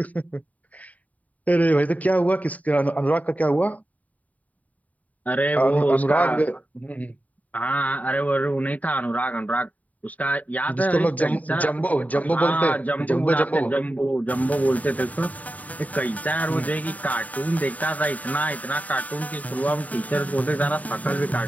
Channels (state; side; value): late; right; 0.073 ms